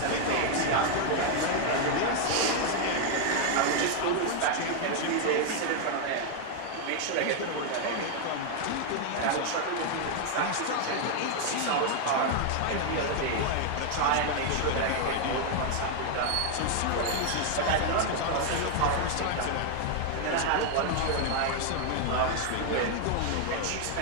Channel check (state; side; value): different; both; correlation 0.00